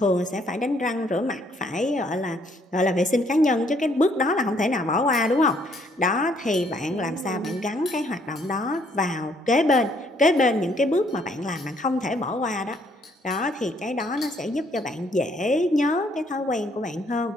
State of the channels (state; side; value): normal; both; correlation 0.67